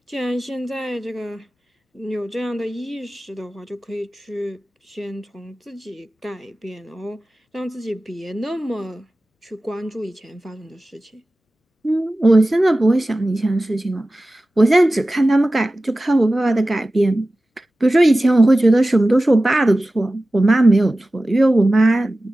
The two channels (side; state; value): both; normal; correlation 0.96